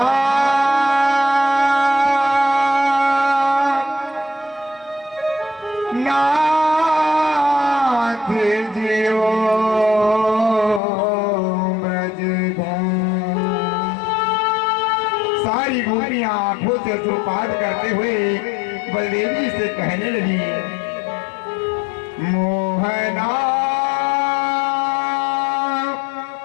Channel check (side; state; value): right; drops out; at 10.8 s